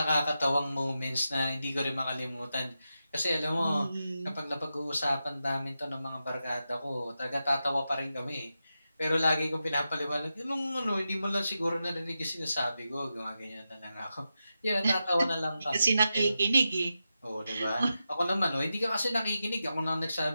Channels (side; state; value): both; inverted; correlation -0.90